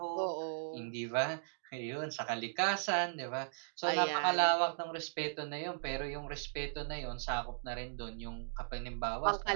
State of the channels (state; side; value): silent; left; digital silence